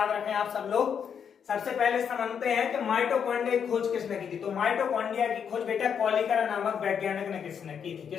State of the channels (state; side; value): quieter; right; 7.5 dB